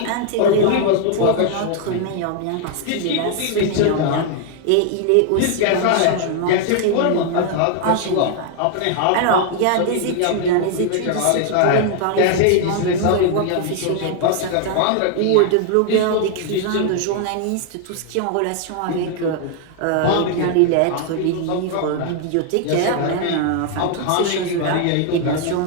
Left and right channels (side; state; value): both; different; correlation 0.00